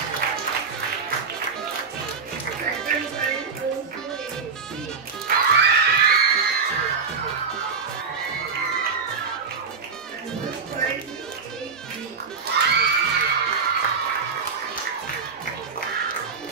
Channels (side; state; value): left; quieter; 5.3 dB